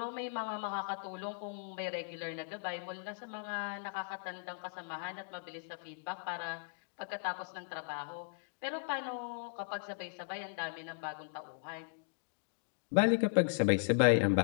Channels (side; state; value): right; silent; digital silence